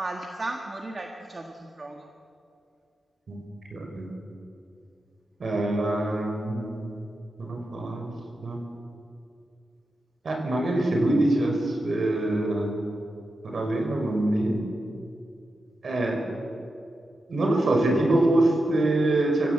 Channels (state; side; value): normal; both; correlation 0.89